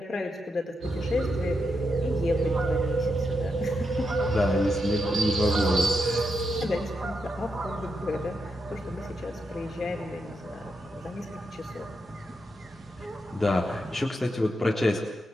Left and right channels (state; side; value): normal; both; correlation 0.84